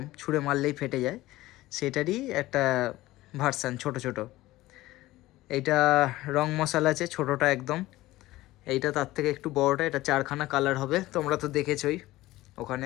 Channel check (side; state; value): right; quieter; 17.3 dB